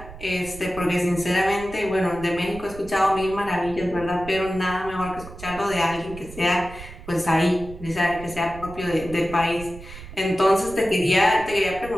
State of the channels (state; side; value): noise; right; rumble, 15 dB below the sound